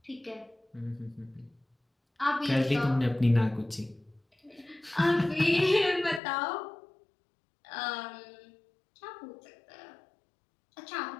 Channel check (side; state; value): right; drops out; at 6.2 s